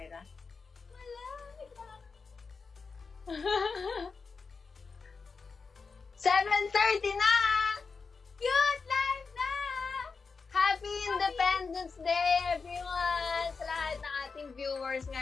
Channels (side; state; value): right; quieter; 4.8 dB